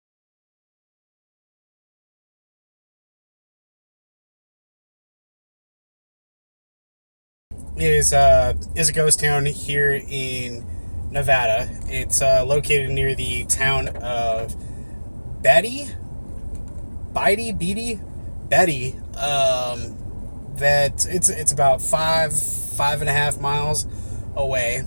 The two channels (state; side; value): inverted; both; correlation -1.00